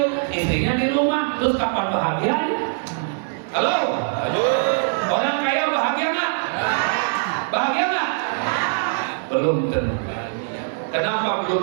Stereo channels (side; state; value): left; silent; 63 dB below the other